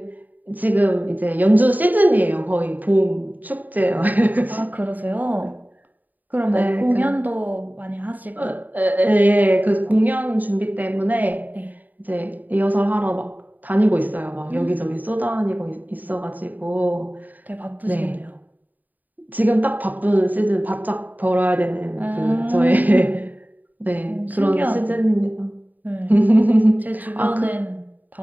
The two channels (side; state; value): left; late; 0.084 ms